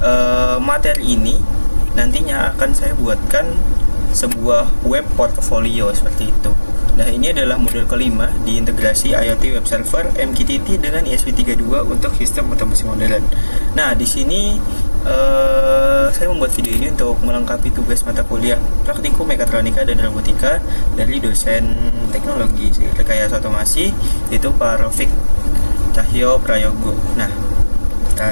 materi ini nantinya akan saya buatkan sebuah web portfolio seperti itu. Nah, ini adalah modul kelima di integrasi IoT web server MQTT dengan ESP32 untuk sistem otomasi modern. Nah, di sini saya membuat video ini untuk melengkapi tugas mata kuliah Praktikum Mekatronika dan Robotika dari dosen Teknologi Rekayasa Otomasi, yaitu Pak Rafiq Cahyo Prayogo. Nah,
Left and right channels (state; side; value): inverted; both; correlation -1.00